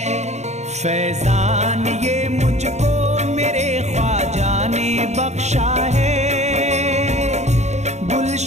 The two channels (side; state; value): left; late; 0.33 ms